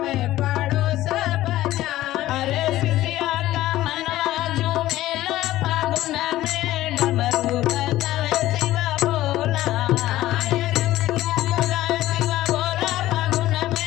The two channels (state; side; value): quieter; right; 15.2 dB